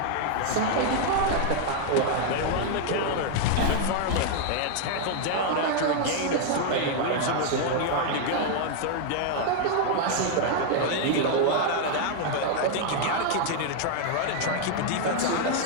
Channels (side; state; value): both; different; correlation 0.00